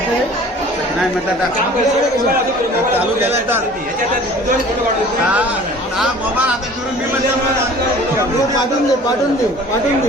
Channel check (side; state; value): both; normal; correlation 0.46